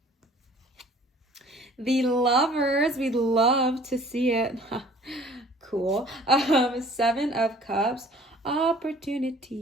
The Lovers, we'd love to see it. Cool. 7 of Cups,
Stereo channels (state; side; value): normal; both; correlation 0.52